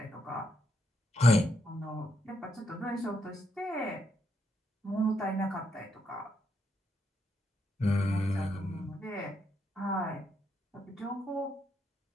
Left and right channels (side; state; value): both; normal; correlation 0.78